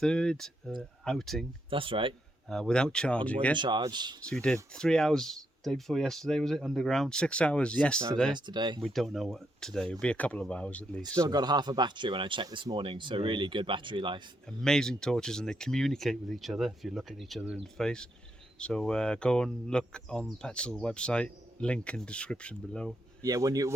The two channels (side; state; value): both; normal; correlation 0.79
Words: outing. That's right. Without charging it. Charge. So we did 3 hours day before yesterday, was it? Underground. 6 hours 6 yesterday. hours yesterday. We don't know what today. It'll be a couple of hours at least. Still got half a battery when I checked this morning, so really good battery life. Amazing torches, and they communicate with each other if you look at each other in the face. So go and look on Petzl website, link in description below. Yeah,